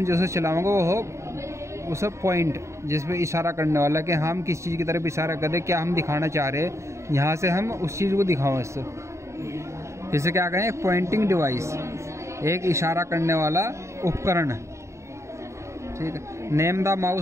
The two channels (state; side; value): late; left; 0.14 ms